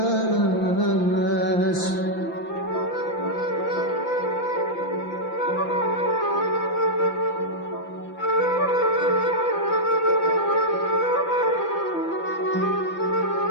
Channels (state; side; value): late; right; 5.9 ms